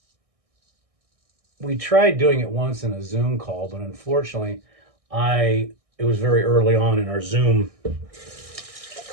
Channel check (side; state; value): left; late; 1.6 ms